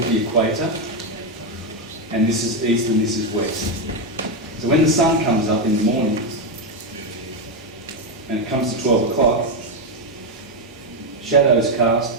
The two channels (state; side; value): normal; both; correlation 0.06